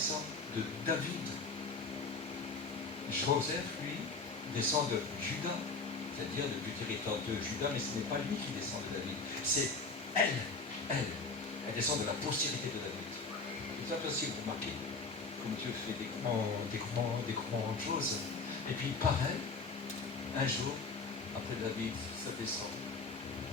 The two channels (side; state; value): right; quieter; 4.0 dB